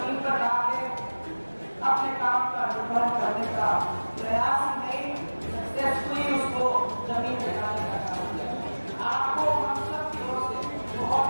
पर ला के अपने काम का निर्वहन करने का प्रयास ही नहीं, सक्सेसफुली उसको जमीन पर लाने का काम किया। आपको हम सब की ओर से बहुत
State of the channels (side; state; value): both; inverted; correlation -1.00